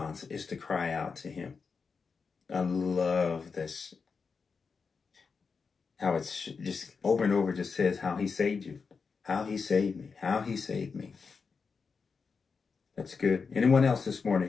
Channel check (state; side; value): quieter; right; 5.2 dB